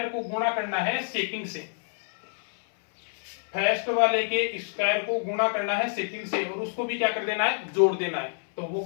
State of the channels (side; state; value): right; silent; 60 dB below the other